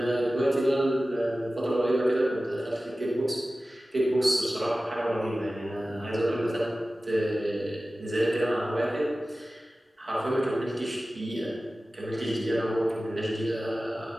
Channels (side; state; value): both; normal; correlation 0.96